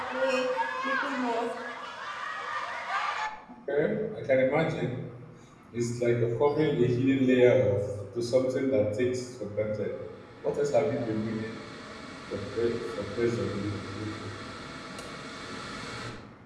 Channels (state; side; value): identical; both; correlation 1.00